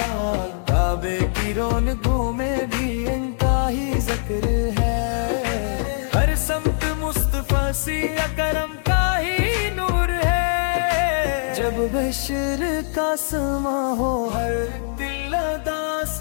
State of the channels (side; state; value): right; silent; 64 dB below the other